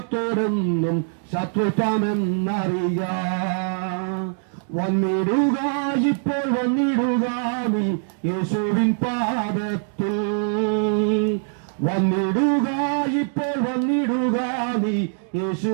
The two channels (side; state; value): left; silent; digital silence